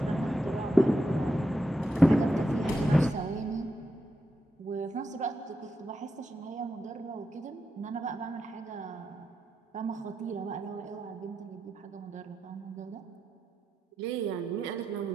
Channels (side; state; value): both; normal; correlation 0.86